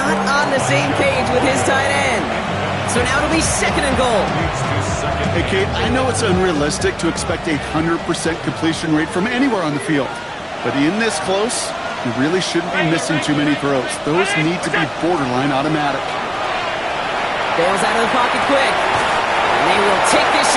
on the same page with his tight end. So now it'll be 2nd and goal. Hey, Kate, I know it's unrealistic to expect a 100% completion rate from anywhere on the field. But in this close, you really shouldn't be missing too many throws. Those need to be borderline automatic. Bails out of the pocket quick. And they will take this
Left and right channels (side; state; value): both; identical; correlation 1.00